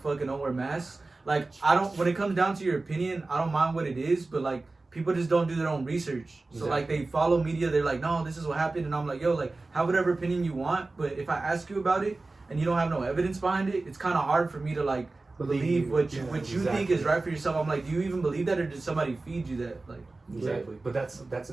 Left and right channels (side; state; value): left; quieter; 3.3 dB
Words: and don't wear masks. Like I don't. When it comes down to your opinion, I don't mind what it is, but like people just don't do their own research. So like they follow media. They're like, no, this is what happened, and I'm like, yo, like have whatever opinion you want, but if I ask you about it and you don't have no evidence behind it, it's kind of hard for me to like believe what you think is right for yourself. I'm like, do you even believe that, or did somebody feed you that? Like, Exactly. But that's